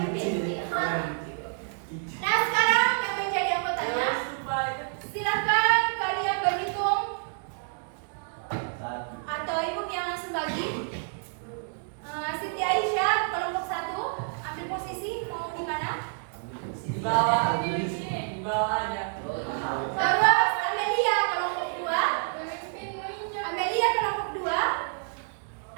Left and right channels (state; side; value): silent; left; 56 dB below the other